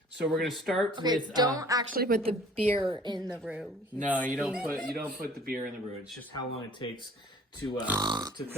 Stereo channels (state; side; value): normal; both; correlation 0.51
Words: So we're going to start with. Don't actually put the beer in the roux. No, you don't put the beer in the roux. It's just how long it takes to